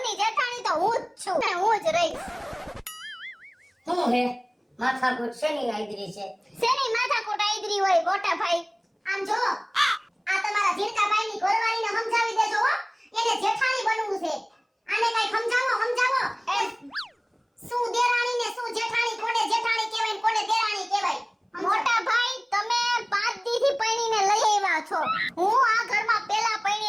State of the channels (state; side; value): identical; both; correlation 1.00